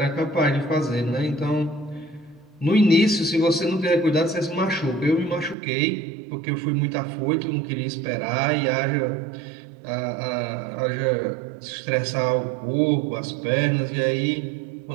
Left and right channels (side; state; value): left; drops out; at 5.6 s